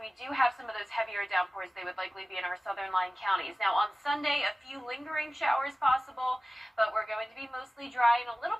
do have some of those heavier downpours, they would likely be in our southern line counties. Now on Sunday, a few lingering showers possible, but we're going to be mostly dry and a little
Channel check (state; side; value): normal; both; correlation 0.97